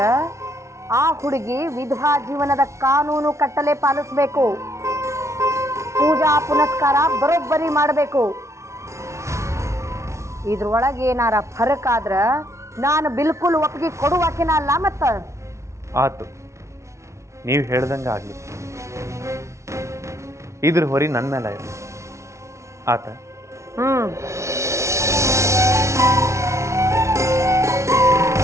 ಆ ಹುಡುಗಿ ವಿಧವಾ ಜೀವನದ ಕಾನೂನು ಕಟ್ಟಲೆ ಪಾಲಿಸ್ಬೇಕು. ಪೂಜಾ ಪುನಸ್ಕಾರ ಬರೋಬ್ಬರಿ ಮಾಡಬೇಕು. ಇದ್ರೊಳಗೆ ಏನಾರ ಫರಕ್ ಆದ್ರ ನಾನು ಬಿಲ್ಕುಲ್ ಒಪ್ಪಿಗೆ ಕೊಡುವಾಕಿನ ಅಲ್ಲ. ಮತ್ತ ಆತು, ನೀವು ಹೇಳ್ದಂಗೆ ಆಗಲಿ. ಇದ್ರ ಹೊರಿ ನನ್ನ ಮೇಲೆ ಇರಲಿ. ಆತ.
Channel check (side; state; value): left; late; 0.14 ms